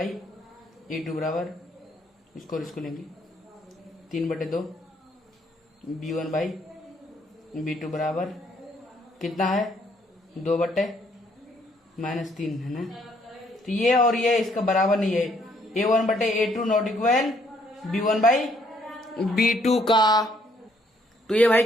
बराबर इसको लेंगे 3/2 B1/B2 बराबर कितना है 2/-3 है ना। तो ये और ये इसका बराबर नहीं है। A1/A2 नॉट इक्वल B1/B2 का। तो ये भाई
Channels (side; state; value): both; normal; correlation 0.68